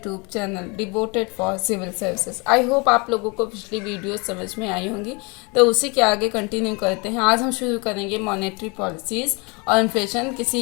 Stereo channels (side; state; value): right; quieter; 29.7 dB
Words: channel devoted for civil services. I hope आप लोगों को पिछली वीडियो समझ में आई होंगी, तो उसी के आगे कंटिन्यू करते हैं। आज हम शुरू करेंगे मॉनेटरी पॉलिसीज़ और इन्फ्लेशन